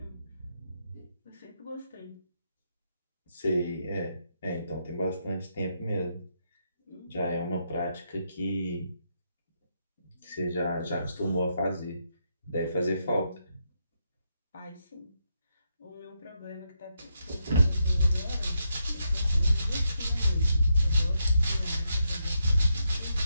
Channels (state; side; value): inverted; both; correlation -0.81